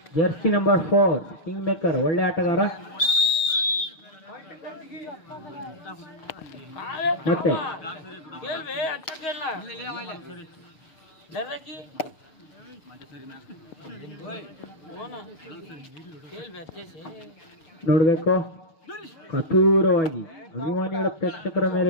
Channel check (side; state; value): right; late; 6.6 ms